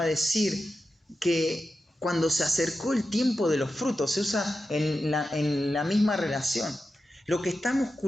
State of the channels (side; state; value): both; normal; correlation 0.91